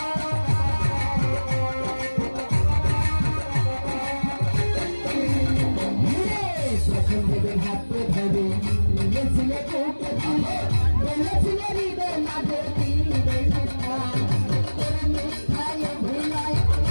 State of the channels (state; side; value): inverted; both; correlation -1.00